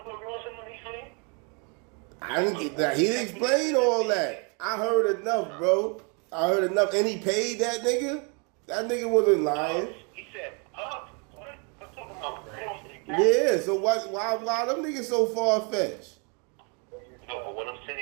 with Ross and what he said? I didn't get that. He didn't explain all that. I heard enough, bro. I heard enough. And he paid that nigga? That nigga wasn't lying. He said, what? I'm talking about Ross. Yeah, so why them niggas so far-fetched? No, but what I'm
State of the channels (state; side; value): quieter; left; 34.3 dB